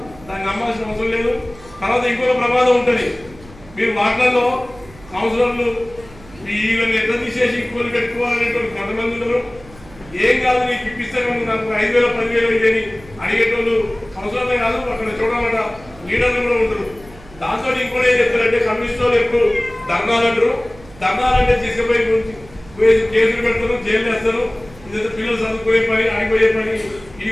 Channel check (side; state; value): right; noise; hum, 21 dB below the sound